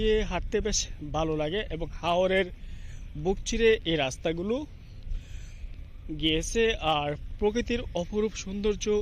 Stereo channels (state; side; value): identical; both; correlation 1.00